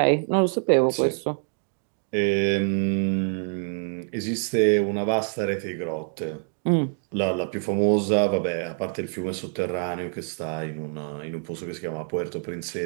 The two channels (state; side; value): silent; left; 61 dB below the other